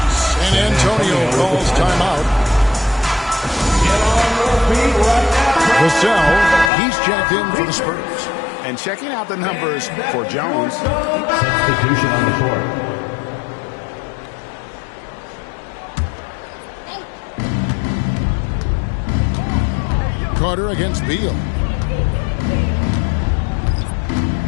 San Antonio calls timeout. Vassell, he's checked in for the Spurs. And checking out the numbers for Jones. Substitution on the court. Carter against Beal.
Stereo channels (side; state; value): right; drops out; at 6.7 s